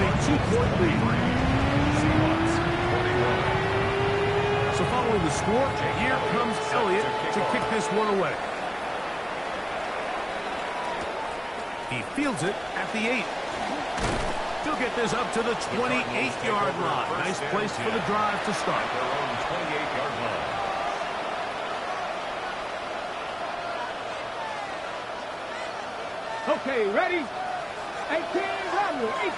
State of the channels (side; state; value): both; identical; correlation 1.00